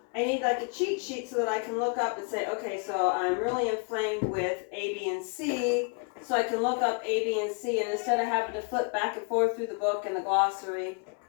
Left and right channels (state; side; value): quieter; right; 36.1 dB